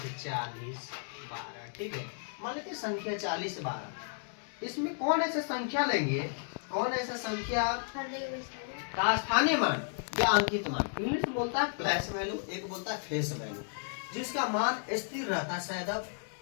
40 12, ठीक है। मान लेते हैं संख्या 40 12। इसमें कौन ऐसा संख्या लेंगे, कौन ऐसा संख्या का स्थानीय मान या अंकित मान, इंग्लिश में बोलता है प्लेस वैल्यू, एक बोलता है फेस वैल्यू, जिसका मान स्थिर रहता है, सदैव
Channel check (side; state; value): right; silent; digital silence